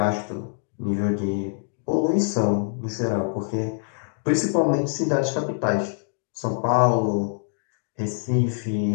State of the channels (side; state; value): right; silent; digital silence